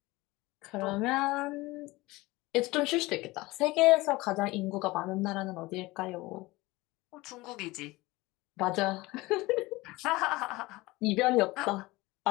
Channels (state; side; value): quieter; right; 20.9 dB